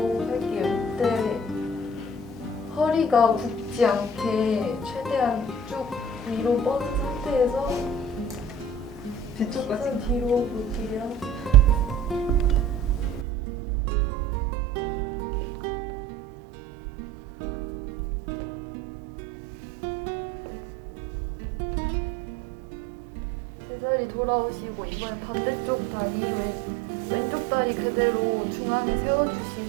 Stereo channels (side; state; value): left; drops out; at 13.2 s